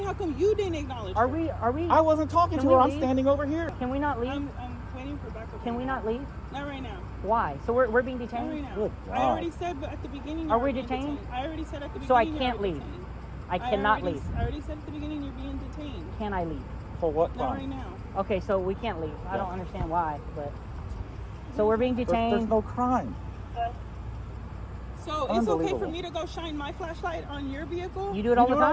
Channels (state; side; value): identical; both; correlation 1.00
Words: how come you didn't acknowledge Are her? we? Are we? I wasn't talking Can to her. we I'm leave? standing over here. Can we not leave? I'm waiting for backup. Can we not leave? Not right now. Why? So we're being Not detained. right now. Good I God. already said, but at the beginning. Are you're we being detained? I already said at the beginning. So I you're can't already leave. detained. I cannot already, leave. I already said at the beginning you're being detained. Can I leave? For what Not right crime? now. Okay, so we can't leave. I don't Yeah. understand why, but so we're being There's detained. no crime. So it's okay for Unbelievable. me to go shine my flashlight on your vehicle? You do it all You the